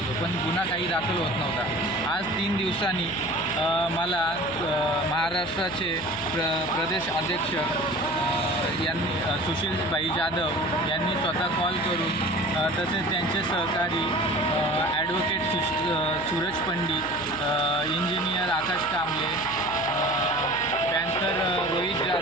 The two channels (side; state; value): left; noise; hum, 18 dB below the sound